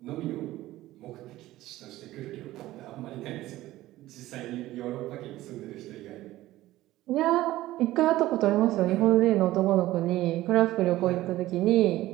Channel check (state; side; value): quieter; left; 16.1 dB